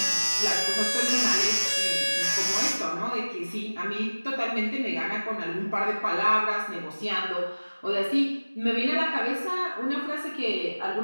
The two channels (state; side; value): inverted; both; correlation -1.00